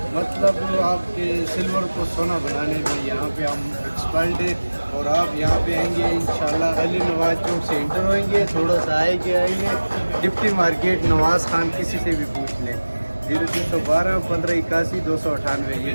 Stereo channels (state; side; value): inverted; both; correlation -1.00